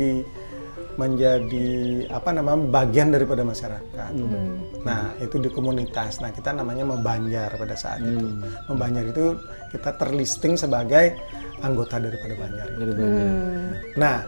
bagian daripada masyarakat. Nah, itu di komunitas. Nah, kita namanya membanjar pada saat itu. Membanjar itu kita terlisting sebagai anggota daripada banjar. Nah,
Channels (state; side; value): inverted; both; correlation -1.00